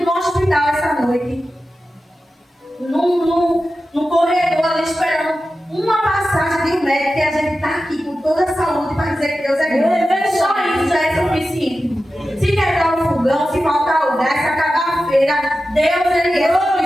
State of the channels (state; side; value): normal; both; correlation 0.93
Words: do hospital essa noite? No corredor ali esperando uma passagem de um médico, que a gente está aqui com toda a saúde para dizer que Deus é grande. Só isso já é suficiente. Se quebrar o fogão, se faltar o gás, se acabar a feira, Deus ele é